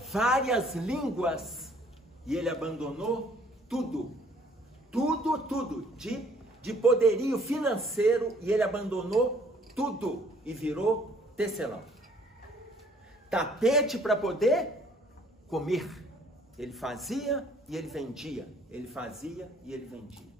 várias línguas. E ele abandonou tudo. Tudo de poderio financeiro. E ele abandonou tudo. E virou tecelão. Tapete para poder comer. Ele fazia e ele vendia. Ele fazia e ele vendia.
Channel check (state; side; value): normal; both; correlation 0.60